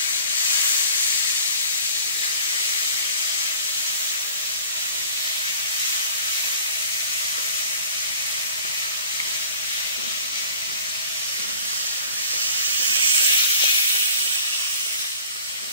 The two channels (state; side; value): inverted; both; correlation -0.47